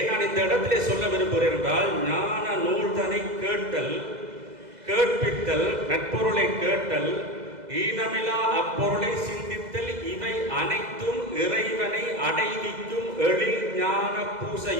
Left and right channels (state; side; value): late; left; 2.0 ms